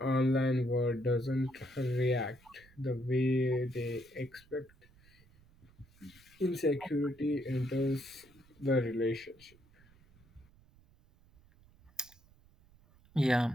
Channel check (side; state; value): right; noise; rumble, 28 dB below the sound